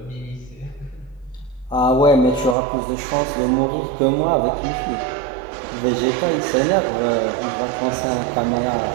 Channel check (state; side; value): drops out; left; at 2.6 s